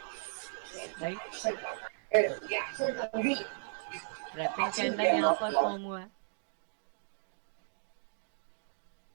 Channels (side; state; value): left; silent; digital silence